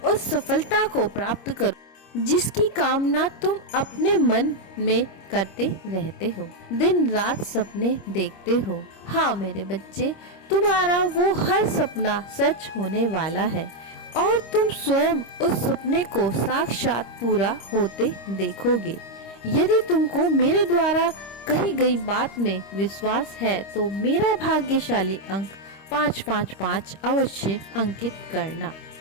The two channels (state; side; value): late; right; 25 ms